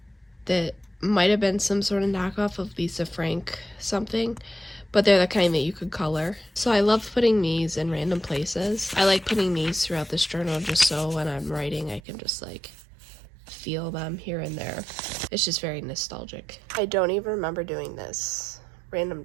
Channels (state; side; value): drops out; left; at 12.0 s